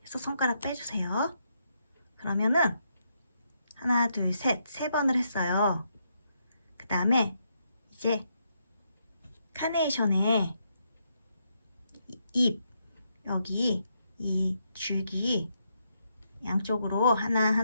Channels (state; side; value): inverted; both; correlation -0.79